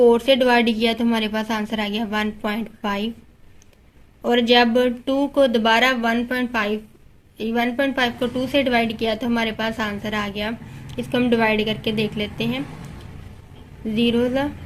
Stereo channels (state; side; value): identical; both; correlation 1.00